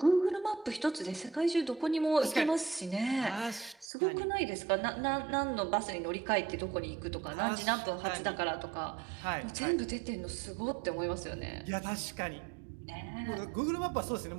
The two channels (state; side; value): drops out; left; at 3.9 s